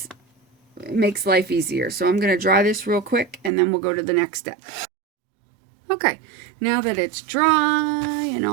life easier. So I'm going to dry this real quick and then we'll go to the next step. Okay, now that it's dry and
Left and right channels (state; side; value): drops out; left; at 3.5 s